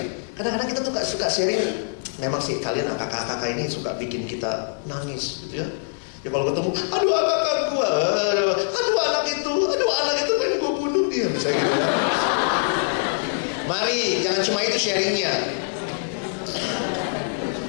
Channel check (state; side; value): silent; right; digital silence